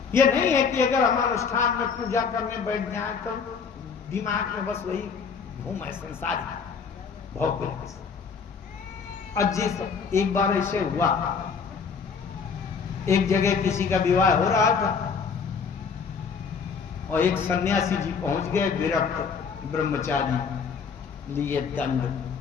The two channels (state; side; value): quieter; right; 5.8 dB